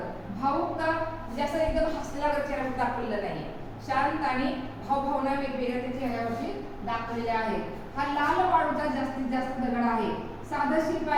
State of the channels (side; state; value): both; identical; correlation 1.00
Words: भावुकता म्हणजे असं एकदम हसलेला चेहरा दाखवलेला नाही. शांत आणि भावभावना वेगवेगळ्या त्या चेहऱ्यावरती दाखवलेल्या आहेत. हा लाल वाळूचा जास्तीत जास्त दगड आहे. साधं शिल्प